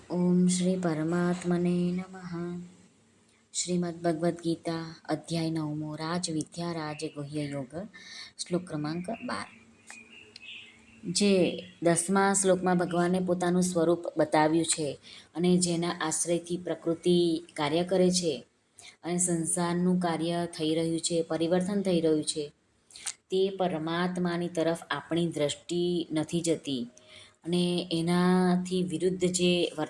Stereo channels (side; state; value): both; identical; correlation 1.00